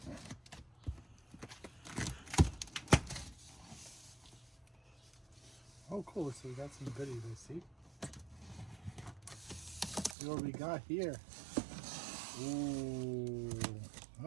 Oh, cool. So we got some goodies, I see. See what we got here. Ooh.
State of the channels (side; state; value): left; drops out; at 10.2 s